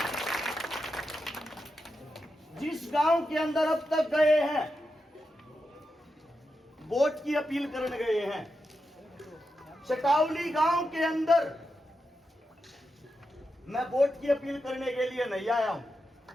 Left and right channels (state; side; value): normal; both; correlation 0.88